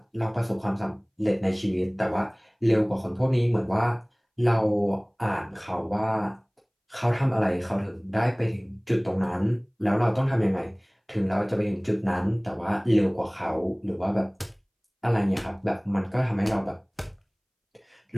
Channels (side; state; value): both; identical; correlation 1.00